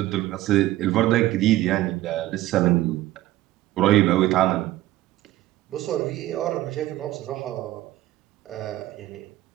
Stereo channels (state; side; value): quieter; left; 15.6 dB